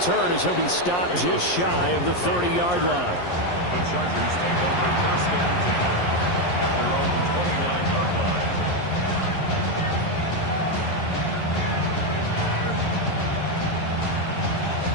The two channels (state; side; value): late; right; 11 ms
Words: as he'll be stopped just shy of the 30-yard line. The Chargers take over 1st and 10 at their own 29-yard line.